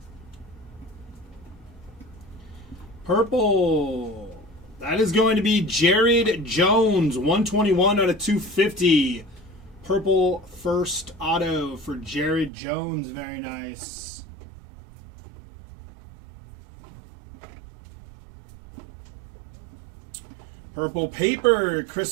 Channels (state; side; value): drops out; left; at 12.5 s